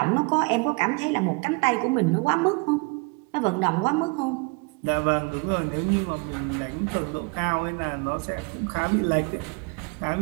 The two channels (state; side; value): quieter; left; 30.3 dB